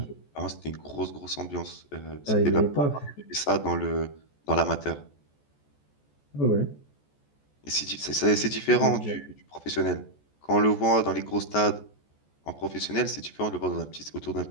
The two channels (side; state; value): right; late; 14 ms